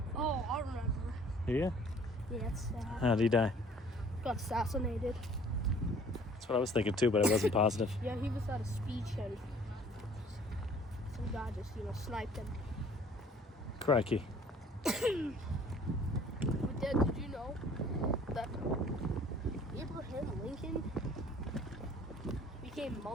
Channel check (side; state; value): both; normal; correlation 0.54